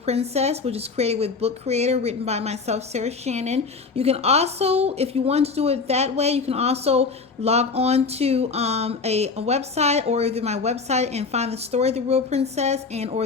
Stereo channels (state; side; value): quieter; right; 4.6 dB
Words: which is created with Book Creator, written by myself, Sarah Shannon. You can also, if you want to do it that way, you can also log on to a website or either my website and find the story The Real Princess and or